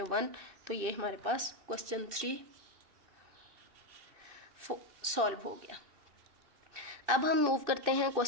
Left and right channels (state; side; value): late; left; 2.6 ms